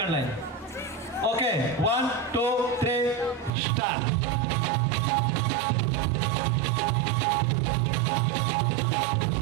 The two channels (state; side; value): drops out; left; at 3.5 s